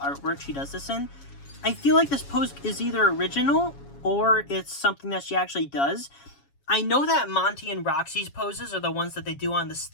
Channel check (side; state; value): right; late; 7.2 ms